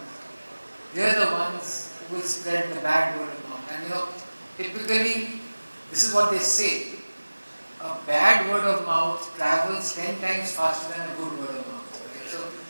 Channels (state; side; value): inverted; both; correlation -1.00